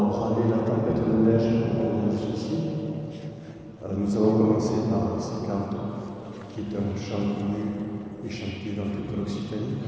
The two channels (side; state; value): both; identical; correlation 1.00